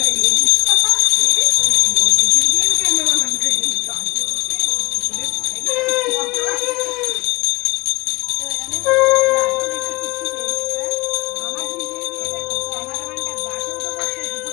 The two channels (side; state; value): right; quieter; 22.7 dB